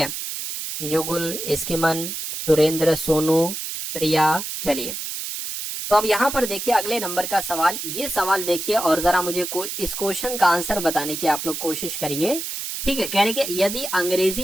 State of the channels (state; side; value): noise; right; hiss, 6 dB below the sound